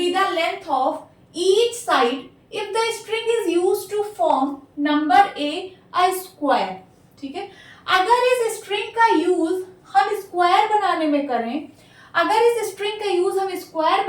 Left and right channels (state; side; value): identical; both; correlation 1.00